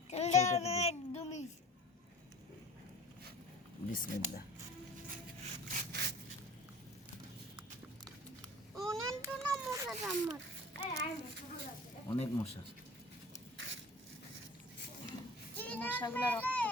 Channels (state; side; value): normal; both; correlation 0.42